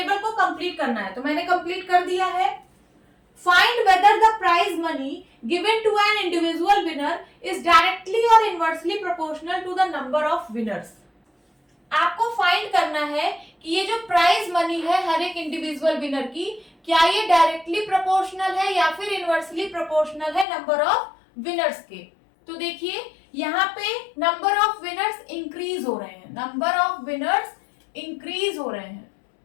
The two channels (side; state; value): right; drops out; at 20.5 s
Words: को कंप्लीट करना है, तो मैंने कंप्लीट कर दिया है। Find whether the prize money given to an individual winner is directly और inversely proportional to the number of winners. आपको फाइंड करना है कि ये जो प्राइज मनी है हर एक इंडिविजुअल विनर की, क्या ये डायरेक्टली प्रोपोर्शनल है या फिर इनवर्सली प्रोपोर्शनल है नंबर ऑफ विनर्स के। तो देखिए यहाँ पे नंबर ऑफ विनर्स इंक्रीज हो रहे हैं, नंबर ऑफ विनर्स इंक्रीज हो रहे हैं,